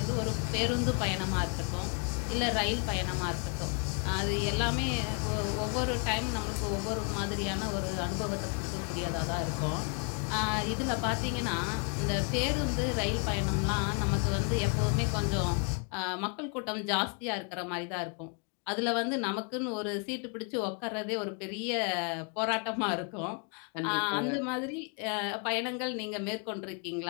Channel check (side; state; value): right; quieter; 38.3 dB